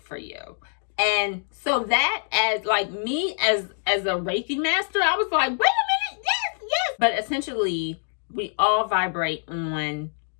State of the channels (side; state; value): right; silent; digital silence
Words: you." And so that, as like me as a Reiki master, I was like, wait a minute, yes. But essentially, we all vibrate on